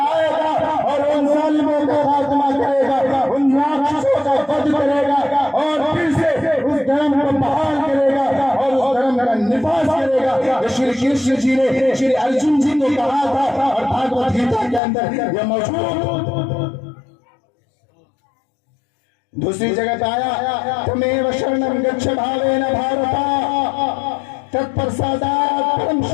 گا اور ان ظالموں کا خاتمہ کرے گا، ان راکشسوں کا وَدھ کرے گا، اور پھر سے اس دھرم کو بحال کرے گا اور اس دھرم کا نفاذ کرے گا۔ شری کرشن جی نے شری ارجن جی کو کہا تھا، اور بھگوت گیتا کے اندر یہ موجود۔ دوسری جگہ پہ آیا تمیو شرنم گچھ بھاوین بھارتا تت پرسادات پرم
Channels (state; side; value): drops out; right; at 14.8 s